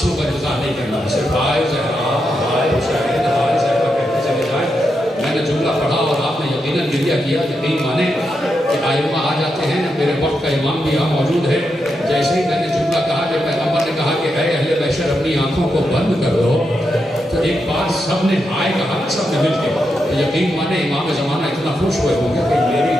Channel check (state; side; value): normal; both; correlation 0.85